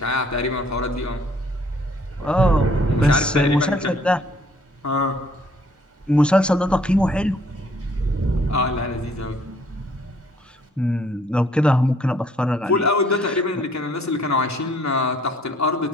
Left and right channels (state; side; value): normal; both; correlation 0.62